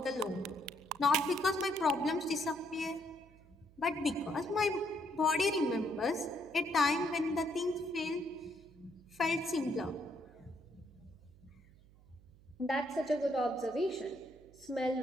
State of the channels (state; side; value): noise; right; hum, 25 dB below the sound